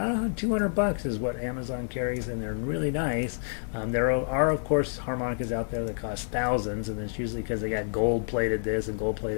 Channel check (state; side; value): silent; right; digital silence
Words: $200 is what Amazon carries, and they're really nice. There are, of course, harmonicas out there that cost thousands, and it's usually because they got gold-plated this and